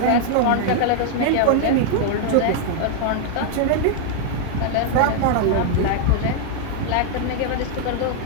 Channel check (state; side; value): different; both; correlation 0.00